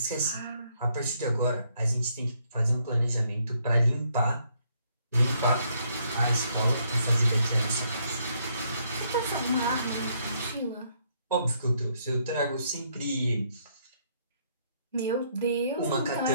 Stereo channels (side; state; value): both; inverted; correlation -0.71